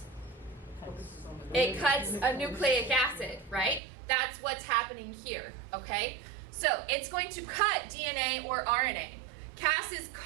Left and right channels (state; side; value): drops out; left; at 3.8 s